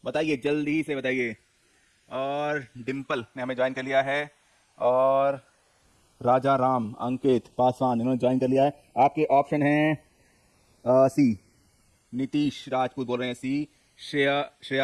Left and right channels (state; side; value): identical; both; correlation 1.00